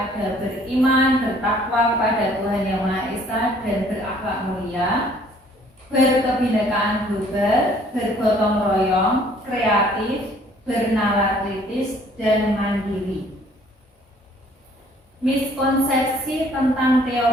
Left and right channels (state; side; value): normal; both; correlation 0.58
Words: beriman, bertakwa kepada Tuhan Yang Maha Esa dan berakhlak mulia, berkebinekaan global, bergotong royong, kreatif, bernalar kritis, dan mandiri. Miskonsepsi tentang